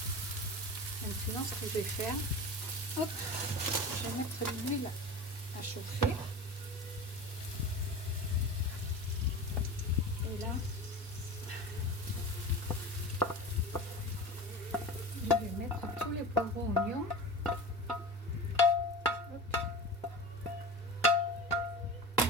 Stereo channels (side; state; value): both; normal; correlation 0.31